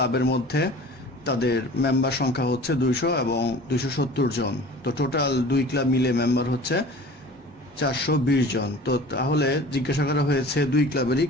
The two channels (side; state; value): both; normal; correlation 0.42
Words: মধ্যে তাদের member সংখ্যা হচ্ছে 200 এবং 270 জন। তো টোটাল দুই ক্লাব মিলে মেম্বার হচ্ছে 420 জন। তো তাহলে জিজ্ঞাসা করা হয়েছে দুই ক্লাবেরই